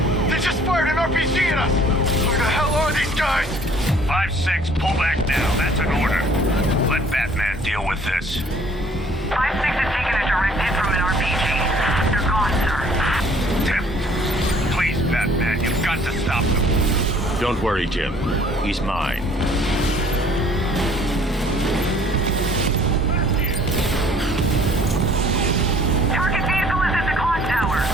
They just fired an RPG at us! Who the hell are these guys? 5-6, pull back now. That's an order. Let Batman deal with this. 5-6 has taken a direct hit from an RPG. They're gone, sir. Tim, please, Batman, you've got to stop them. Don't worry, Jim. He's mine.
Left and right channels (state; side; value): normal; both; correlation 0.56